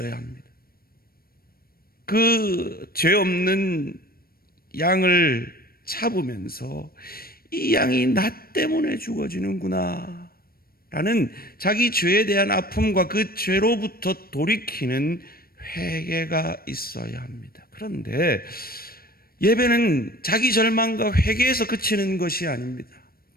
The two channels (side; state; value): right; late; 0.44 ms